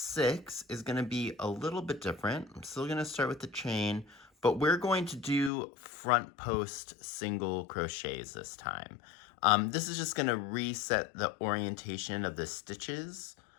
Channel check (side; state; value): right; drops out; at 5.5 s